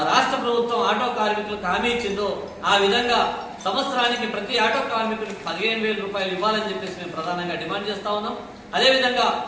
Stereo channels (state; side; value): identical; both; correlation 1.00